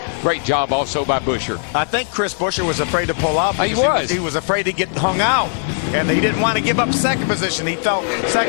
great job also by Buescher. I think Chris Buescher was afraid to pull out. He was. He was afraid to get hung out, and he didn't want to give up second position. He felt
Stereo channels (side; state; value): right; silent; digital silence